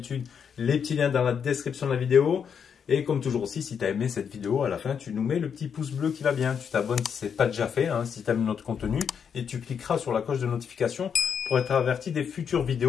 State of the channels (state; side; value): quieter; right; 7.2 dB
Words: les petits liens dans la description de la vidéo. Et comme toujours aussi, si tu as aimé cette vidéo, à la fin, tu nous mets le petit pouce bleu qui va bien. Tu t'abonnes si ce n'est pas déjà fait, si tu aimes notre contenu. Et tu cliqueras sur la cloche de notification pour être averti des futures